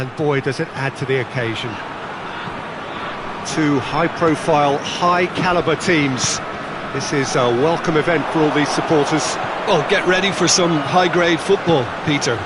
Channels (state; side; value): identical; both; correlation 1.00